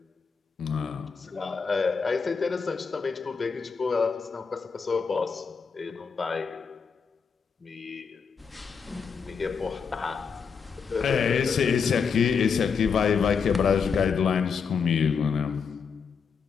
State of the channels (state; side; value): quieter; right; 5.9 dB